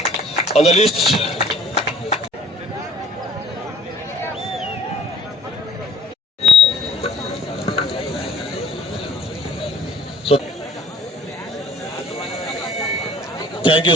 on the list. So, thank you,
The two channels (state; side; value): normal; both; correlation 0.55